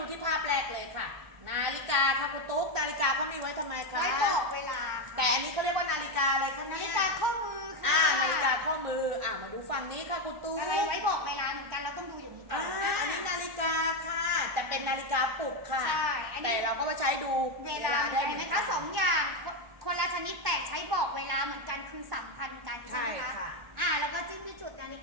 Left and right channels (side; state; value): left; late; 1.4 ms